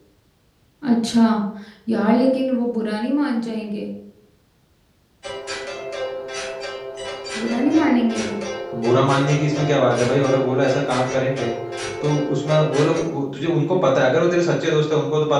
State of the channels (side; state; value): both; identical; correlation 1.00